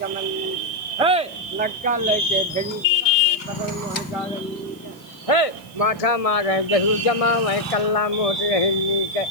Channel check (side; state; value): right; noise; hiss, 25 dB below the sound